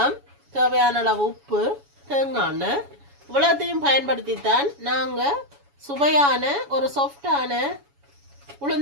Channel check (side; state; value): left; late; 7.1 ms